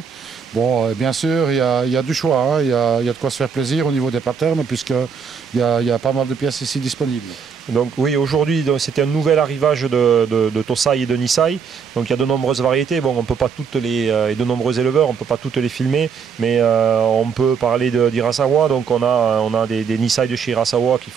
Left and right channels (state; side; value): quieter; left; 6.3 dB